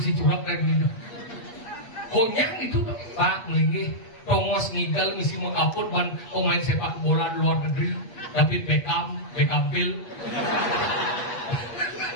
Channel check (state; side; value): late; right; 8.4 ms